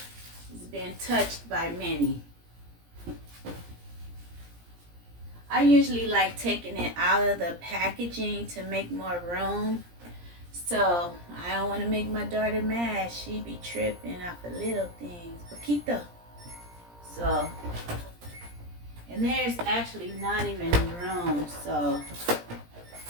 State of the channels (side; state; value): left; late; 17 ms